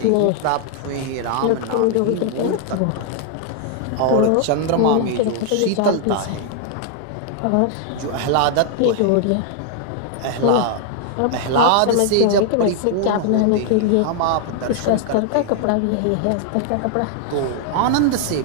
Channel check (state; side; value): different; both; correlation 0.00